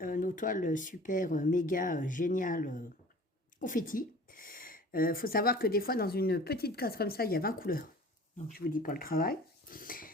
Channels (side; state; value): both; normal; correlation 0.45